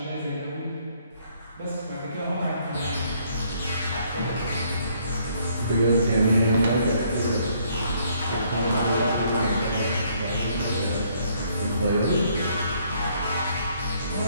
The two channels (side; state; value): both; inverted; correlation -0.67